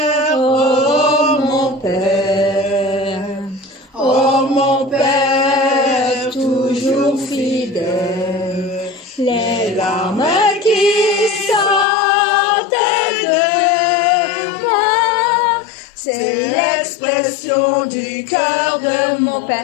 oh mon Père, oh mon Père, toujours fidèle, les larmes qui sortent de moi, c'est l'expression du cœur de mon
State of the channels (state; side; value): drops out; right; at 11.9 s